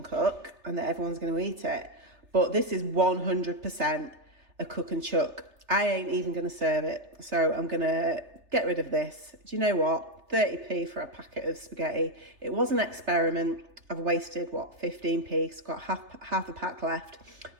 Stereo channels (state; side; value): late; left; 3.3 ms